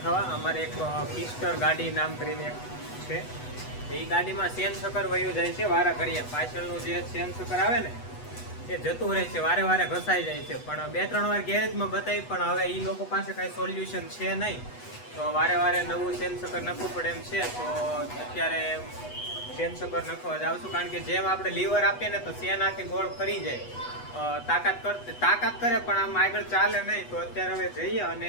અમારે એક પિસ્ટર ગાડી નામ કરીને છે. એ ગાડીમાં સેન સકર વયું જાય છે વારા કરીએ. પાછળનું જે સેન સકર આવે ને એ જતું રહે છે, વારે વારે ઘસાઈ જાય છે. પણ 2-3 વાર ગેરેજમાં બતાવી, પણ હવે એ લોકો પાસે કાંઈ સોલ્યુશન છે નહીં. તો વારે વારે નવું સેન સકર નાખવું પડે એમ છે. તો અત્યારે સેન સકર નાખવા જાઉં છું, કારણ કે જેમ આપણે લીવર આપીએ ને તો સેન આખી ગોળ ફરી જાય. તાકાત કરે પણ આમ આગળ ચાલે નહીં. તો અત્યારે હવે જઈએ અને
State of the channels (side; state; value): right; late; 8.1 ms